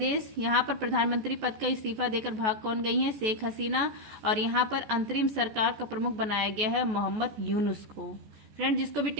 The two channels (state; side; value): late; left; 14 ms